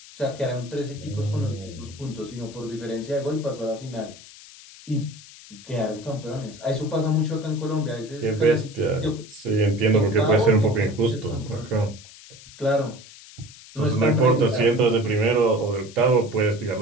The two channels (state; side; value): noise; left; hiss, 19 dB below the sound